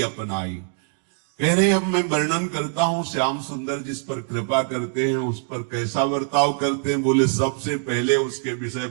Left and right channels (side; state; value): left; silent; 56 dB below the other